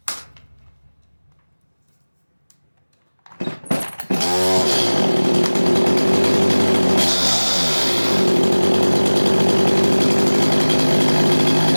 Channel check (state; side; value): inverted; both; correlation -1.00